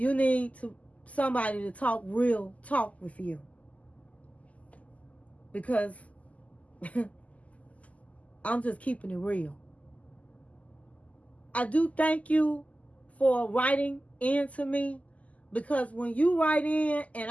need somebody to talk real talk with you. Because I'm just keeping it real. I do thank you for writing in to me, because when you write in and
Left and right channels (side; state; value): right; late; 0.071 ms